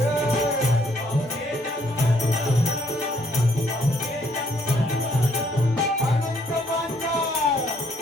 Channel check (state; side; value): normal; both; correlation 0.67